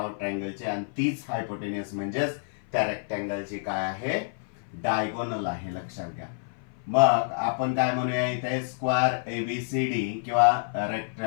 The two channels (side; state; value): right; silent; 55 dB below the other